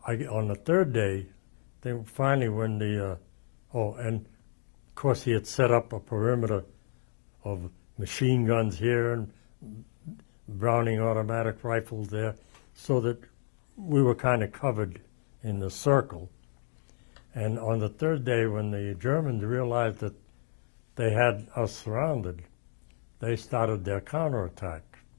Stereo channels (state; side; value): silent; right; digital silence